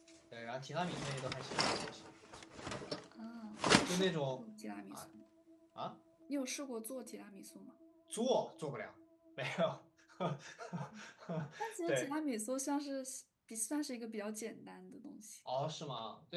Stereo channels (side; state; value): both; identical; correlation 1.00